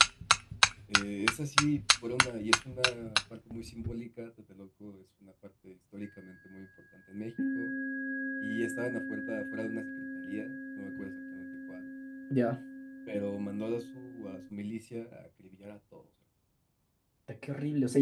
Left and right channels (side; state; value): both; identical; correlation 1.00